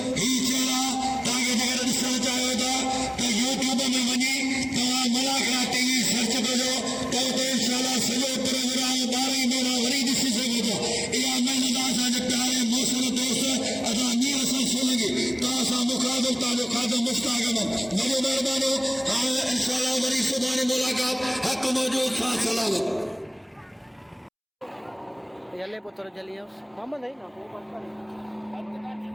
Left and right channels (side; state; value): both; identical; correlation 1.00